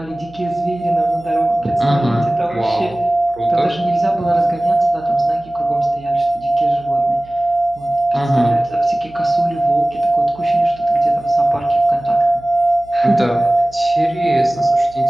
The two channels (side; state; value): right; noise; hum, 24 dB below the sound